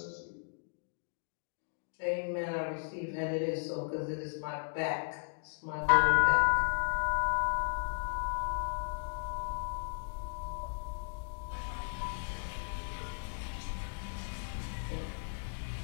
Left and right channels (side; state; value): right; silent; digital silence